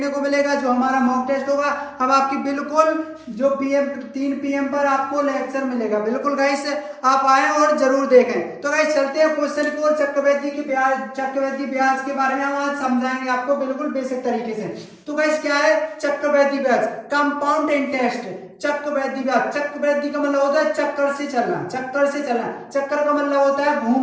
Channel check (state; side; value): identical; both; correlation 1.00